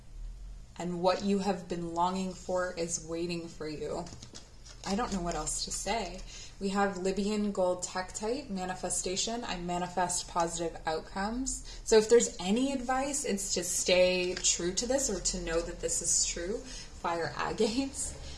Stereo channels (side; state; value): both; identical; correlation 1.00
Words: And what you have been longing for is waiting for you. I don't know what else to say. We have Libyan Gold Tektite Manifestation. I manifest positive outcomes. So if there's any advice, it's to stay true to this or to know that this is true. Fire Agates.